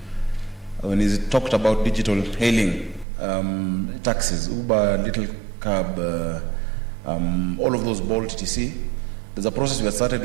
when he talked about digital hailing, taxis, Uber, Little Cab, all of those, Bolt, etc. There's a process we have started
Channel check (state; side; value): drops out; left; at 3.1 s